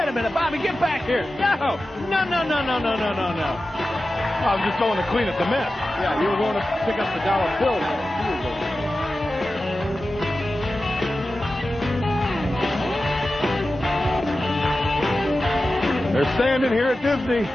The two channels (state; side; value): normal; both; correlation 0.94